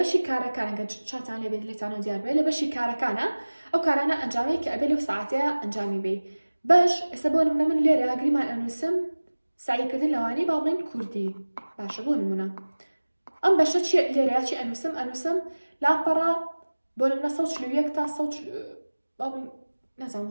کارەکان کە چاتان لێبێت لێتانەوە دیار بێت لە بەشی کارەکانە ئەو کارانە ئەنجامەیە کە ئەبێ لەو ساعتەیە ئەنجامی بێ باش ئێستا بۆ نمونە من لێرە گریمان ئەنووسم سعیکردن لەوانەی با بڵێن کوردی باشە بۆ نمونە ئەم بەشە چی لێرەیە چی ئەنووسم لاپەڕە بۆ نمونە 141 تا 100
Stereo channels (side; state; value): both; inverted; correlation -1.00